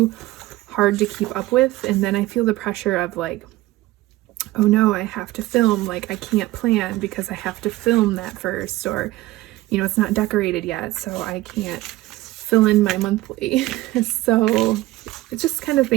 hard to keep up with. And then I feel the pressure of like, oh no, I have to film, like I can't plan because I have to film that first, or, you know, it's not decorated yet, so I can't fill in my monthly. So it's just kind of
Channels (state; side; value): quieter; left; 17.5 dB